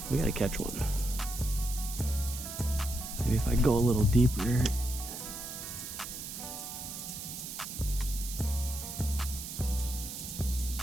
We gotta catch one. Maybe if I go a little deeper.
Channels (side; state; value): right; noise; hiss, 8 dB below the sound